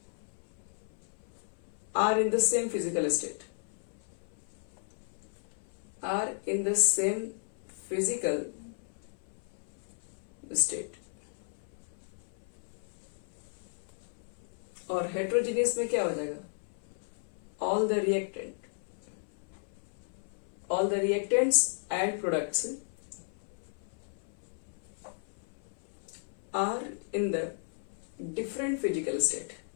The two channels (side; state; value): right; silent; 55 dB below the other